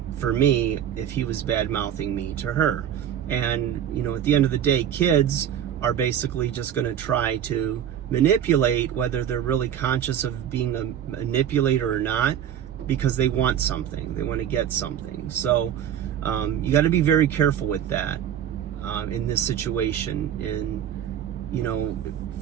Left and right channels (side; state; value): left; quieter; 9.6 dB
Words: for me if he was bad-mouthing me to her. And, at the end of the day, kids are basically just going to try to manipulate, whether they're really conscious of being a manipulator or not, because they want something. They want to get something. So you got to be very careful with that in this situation. And,